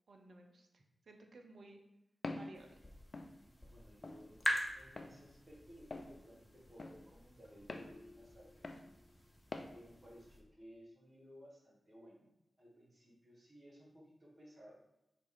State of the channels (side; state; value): both; normal; correlation 0.95